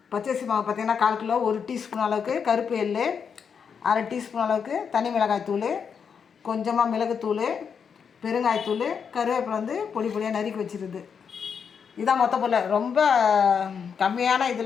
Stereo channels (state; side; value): quieter; right; 6.7 dB